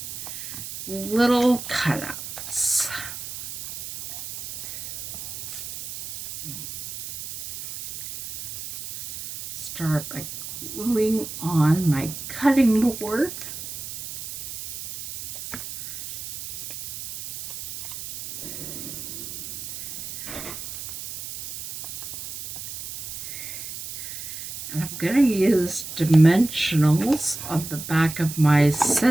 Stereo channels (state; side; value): noise; right; hiss, 9 dB below the sound